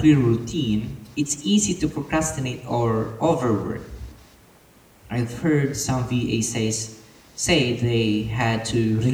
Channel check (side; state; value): both; identical; correlation 1.00